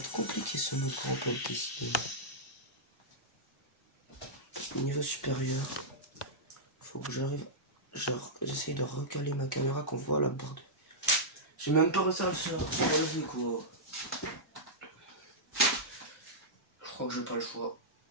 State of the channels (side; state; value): both; normal; correlation -0.11